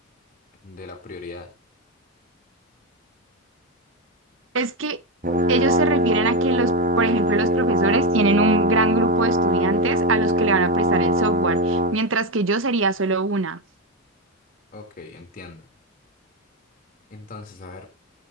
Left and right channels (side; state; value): both; normal; correlation 0.11